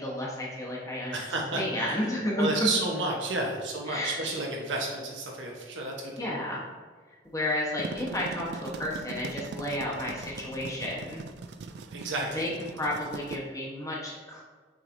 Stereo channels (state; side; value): normal; both; correlation 0.28